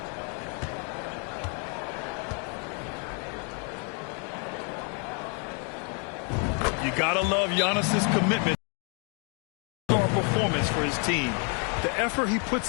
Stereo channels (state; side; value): quieter; right; 38.4 dB